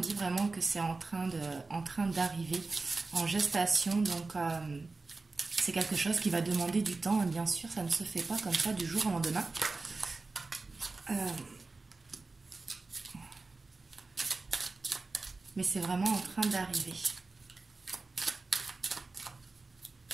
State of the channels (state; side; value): quieter; left; 3.7 dB